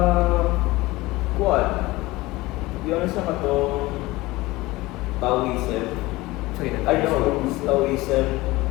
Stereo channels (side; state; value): right; quieter; 20.1 dB